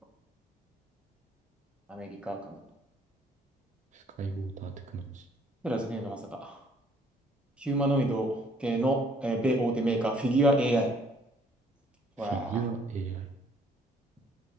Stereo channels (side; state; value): both; normal; correlation 0.62